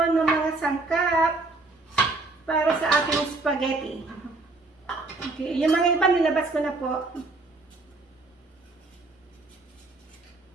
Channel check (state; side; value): quieter; left; 3.3 dB